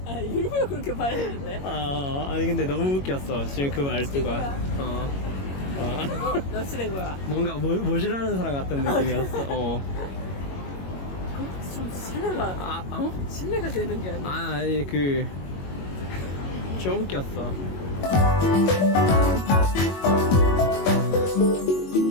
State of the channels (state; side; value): late; right; 21 ms